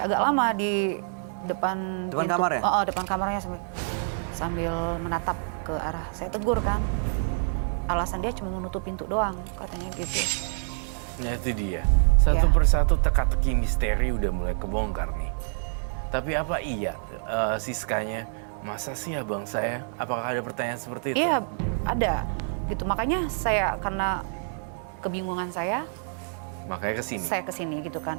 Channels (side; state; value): left; silent; digital silence